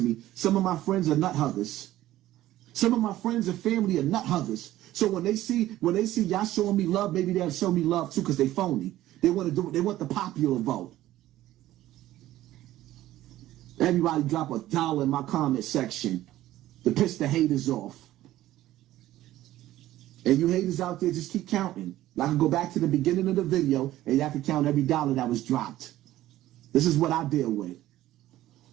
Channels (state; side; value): quieter; left; 14.7 dB